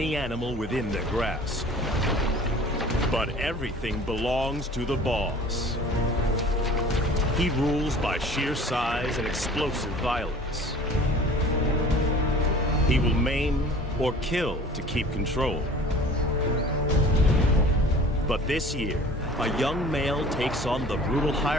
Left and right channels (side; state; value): both; normal; correlation 0.45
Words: animal within their grasp. But everything belongs to the boss. He rules by sheer size and explosive violence. He will maim or kill to keep control. But this year, a young male takes on the brutal